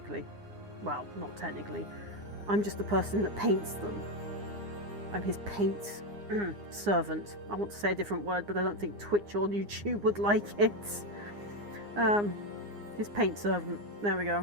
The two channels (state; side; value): late; left; 9.7 ms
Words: Well, not technically. I'm just the person that paints them. I'm his paint servant. I want to say a different word, but I don't think Twitch or YouTube would like it. His paint servant. There we